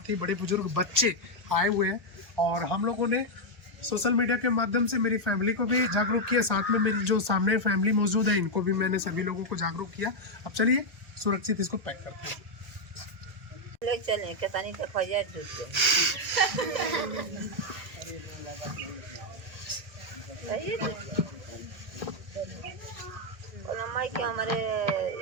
बड़े बुजुर्ग, बच्चे आए हुए हैं। और हम लोगों ने सोशल मीडिया के माध्यम से मेरी फैमिली को भी जागरूक किया, साथ में मेरी जो सामने फैमिली मौजूद है इनको भी मैंने सभी लोगों को जागरूक किया। अब चलिए सुरक्षित इसको पैक करते हैं। मम्मी के हमारे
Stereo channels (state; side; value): late; left; 1.4 ms